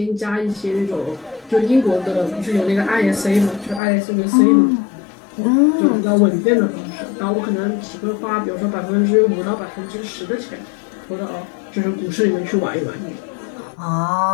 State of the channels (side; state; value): right; drops out; at 3.8 s